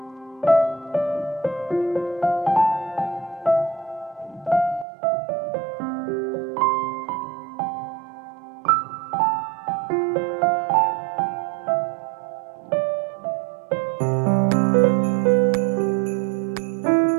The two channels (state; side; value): drops out; left; at 4.9 s